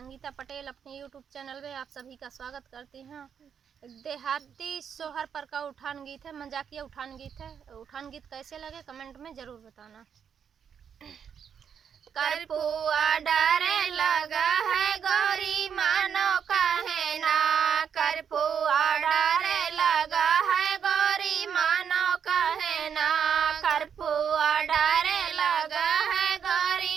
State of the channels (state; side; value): quieter; left; 7.6 dB